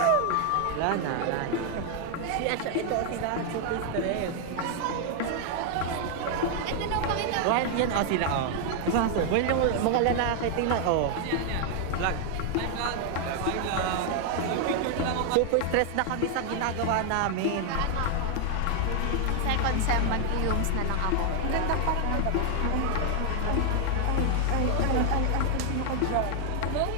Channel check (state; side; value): different; both; correlation 0.00